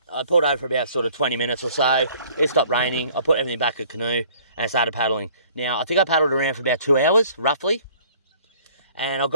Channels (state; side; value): inverted; both; correlation -0.55